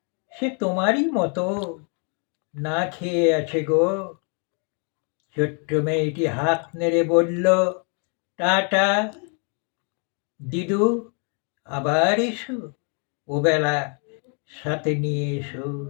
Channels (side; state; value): right; quieter; 39.6 dB